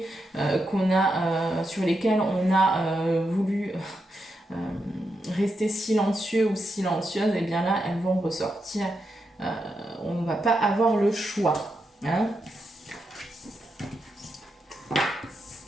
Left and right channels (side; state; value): both; normal; correlation 0.84